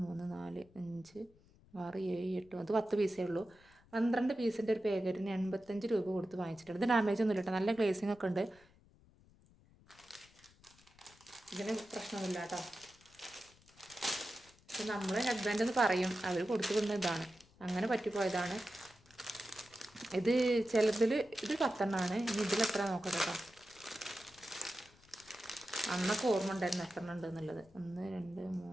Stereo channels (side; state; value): left; noise; rumble, 27 dB below the sound